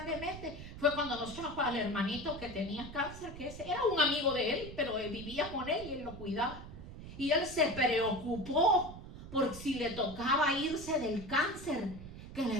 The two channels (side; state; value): right; noise; rumble, 13 dB below the sound